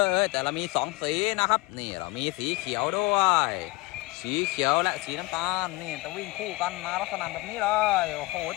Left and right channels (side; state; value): right; quieter; 22.0 dB